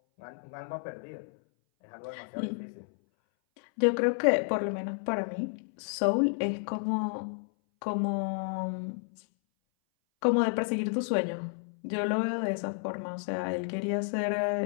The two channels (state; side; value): silent; right; 57 dB below the other